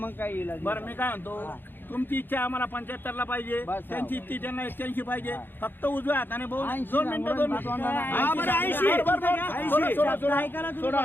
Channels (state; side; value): late; right; 0.097 ms